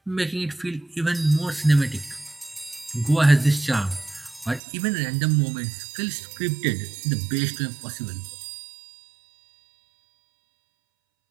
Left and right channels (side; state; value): left; drops out; at 4.6 s